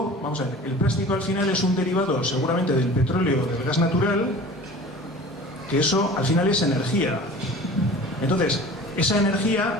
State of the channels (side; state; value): both; normal; correlation 0.41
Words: vamos a ver, el plástico al final es un derivado seguramente del petróleo, del gas natural, que eso al final es energía. Entonces, esa